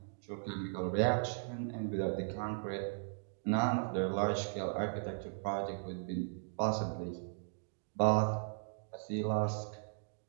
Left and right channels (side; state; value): left; silent; digital silence